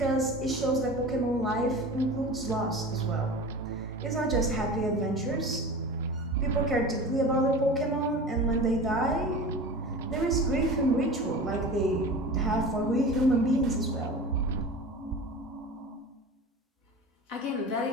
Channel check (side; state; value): both; normal; correlation 0.34